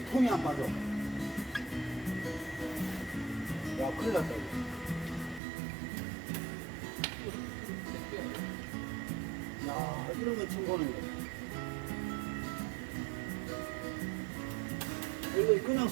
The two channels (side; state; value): left; drops out; at 5.4 s